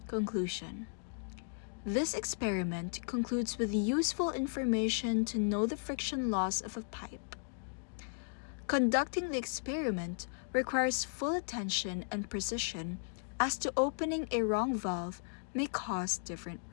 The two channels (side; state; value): right; silent; digital silence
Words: Conclusion. This experiment concludes with useful information to know the friction loss of a pipe. Conducting the experiment requires full attention and precision, as to opening a wrong valve may cause different